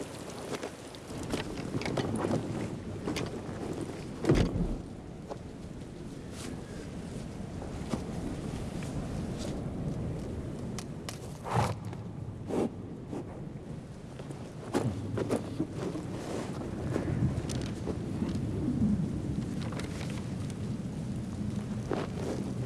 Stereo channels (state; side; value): identical; both; correlation 1.00